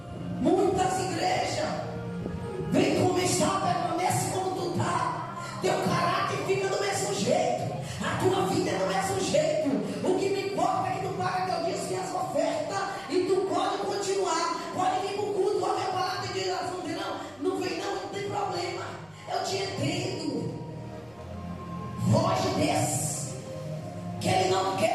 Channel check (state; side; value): noise; left; rumble, 29 dB below the sound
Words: Muitas igrejas vem como está, permanece como tu está, teu caráter fica do mesmo jeito. a tua vida é do mesmo jeito. O que me importa é que tu paga teu dízimo e as ofertas, e tu pode continuar, pode vir para o culto, pode ver a palavra de Deus, não vem não tem problema, eu te entendo. Foge desse, que ele não